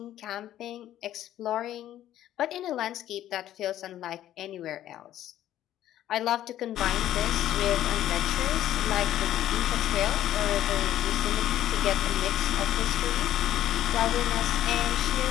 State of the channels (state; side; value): quieter; right; 12.5 dB